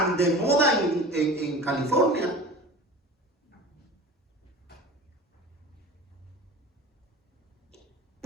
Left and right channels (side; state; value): both; normal; correlation 0.37